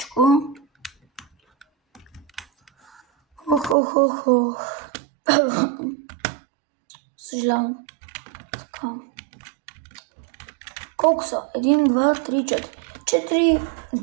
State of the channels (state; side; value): drops out; left; at 3.8 s